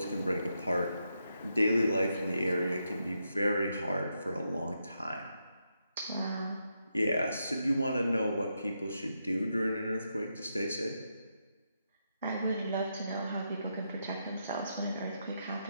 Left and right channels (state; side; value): inverted; both; correlation -0.83